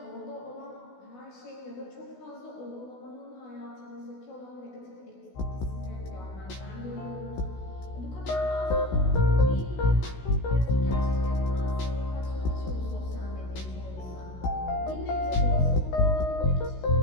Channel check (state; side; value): late; right; 16 ms